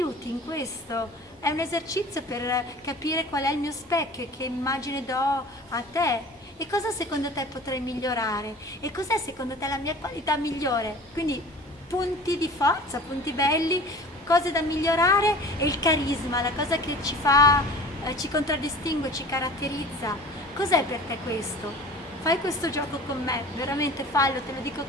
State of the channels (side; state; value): both; normal; correlation 0.41